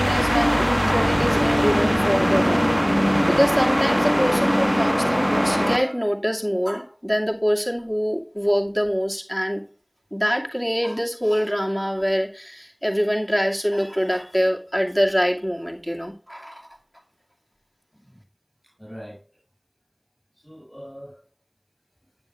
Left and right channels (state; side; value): identical; both; correlation 1.00